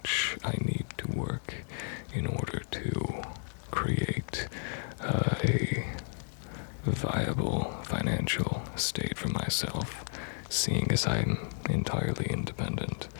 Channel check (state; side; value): silent; right; 56 dB below the other